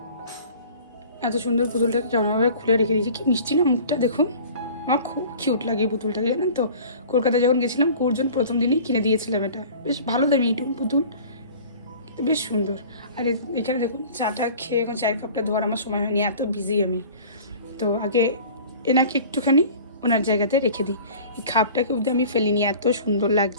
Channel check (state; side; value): inverted; both; correlation -0.44